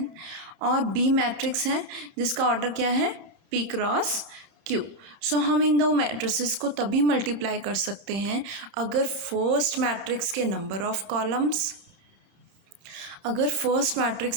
और बी मैट्रिक्स है जिसका ऑर्डर क्या है p क्रॉस q। सो हम इन दो मैट्रिसेस को तभी मल्टीप्लाई कर सकते हैं अगर फर्स्ट मैट्रिक्स के number of columns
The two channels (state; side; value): late; left; 30 ms